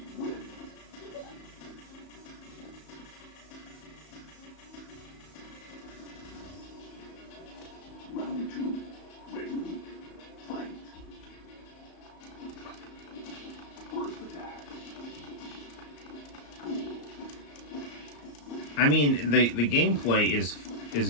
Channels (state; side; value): late; right; 34 ms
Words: Round 2, ready, fight. First attack. I mean, the gameplay is